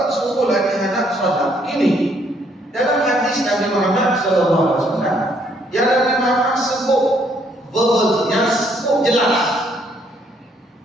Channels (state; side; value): normal; both; correlation 0.68